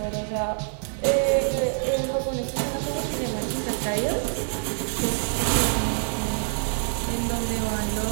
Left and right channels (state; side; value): silent; left; digital silence